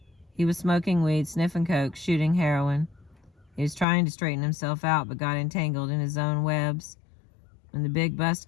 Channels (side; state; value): right; drops out; at 3.9 s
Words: He was smoking weed, sniffing coke, shooting heroin. He was trying to straighten himself out, but got entangled in his own webs. When the big bust